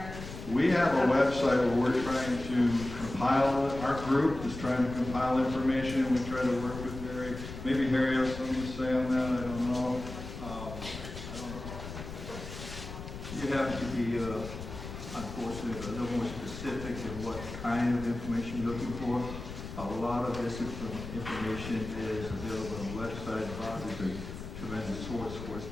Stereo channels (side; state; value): left; noise; rumble, 10 dB below the sound